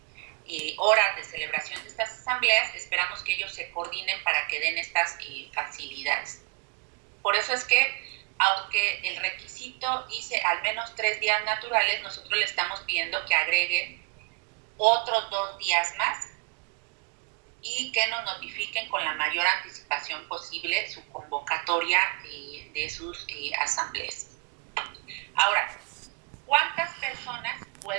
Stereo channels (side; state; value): left; quieter; 31.3 dB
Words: horas de celebración de estas asambleas, esperamos que ellos se coordinen para que den estas facilidades. Por eso es que, aunque el requisito dice al menos 3 días naturales, nosotros le estamos pidiendo que agregue otros 2 días más y que nos notifiquen con la mayor anticipación posible su convocatoria de sus asambleas. Ahora, ¿cuántas personas